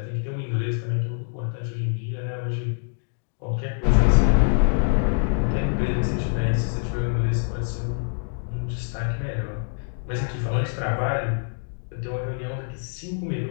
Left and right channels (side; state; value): right; silent; digital silence